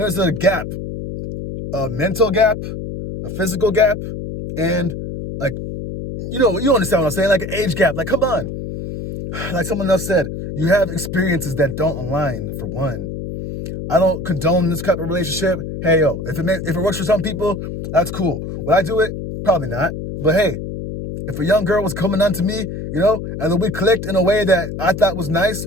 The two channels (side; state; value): left; noise; hum, 7 dB below the sound